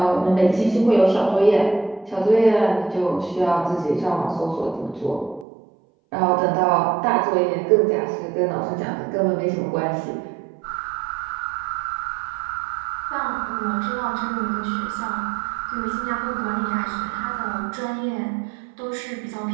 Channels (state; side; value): drops out; left; at 5.5 s